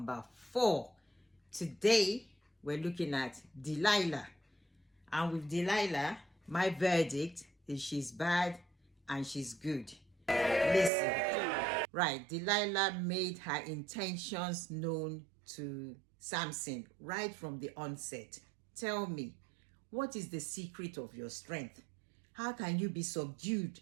4. Today, we're looking at Delilah. And with Delilah, my verdict is she's bad and she's good. Listen. Right, Delilah made her intentions known to Samson right from the onset. Tell me, what is the secret of your strength? How can you be subdued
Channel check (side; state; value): left; drops out; at 10.9 s